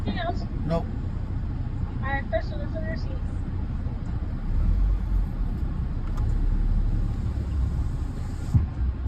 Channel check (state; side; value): identical; both; correlation 1.00